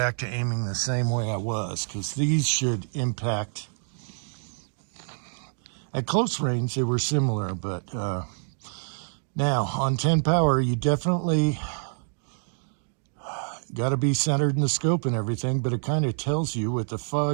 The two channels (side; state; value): left; silent; digital silence